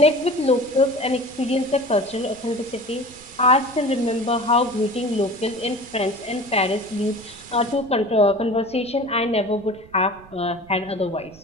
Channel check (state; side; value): noise; right; rumble, 23 dB below the sound